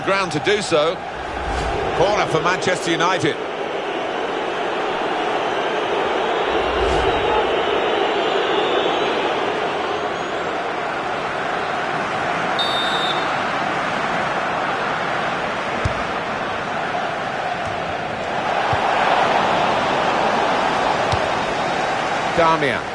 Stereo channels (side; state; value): both; identical; correlation 1.00